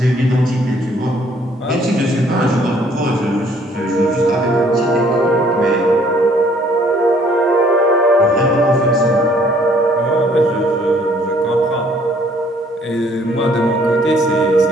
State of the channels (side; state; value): both; normal; correlation 0.61